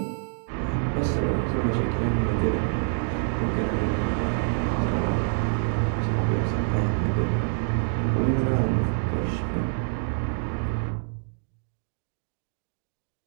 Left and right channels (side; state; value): left; silent; 61 dB below the other